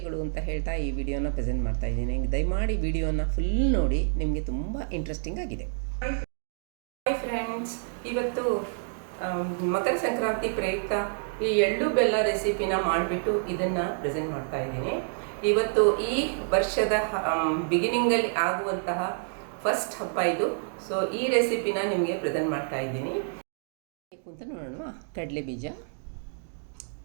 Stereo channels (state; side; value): silent; left; 59 dB below the other